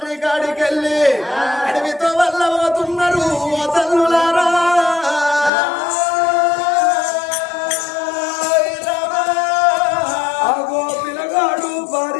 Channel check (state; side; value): drops out; right; at 5.5 s